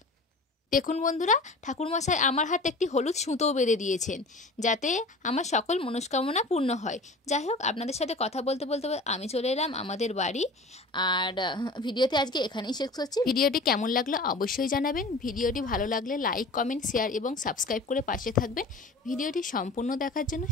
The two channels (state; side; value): quieter; right; 3.1 dB